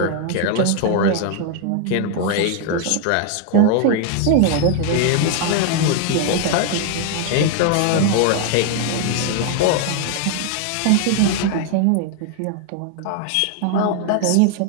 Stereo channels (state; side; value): different; both; correlation 0.01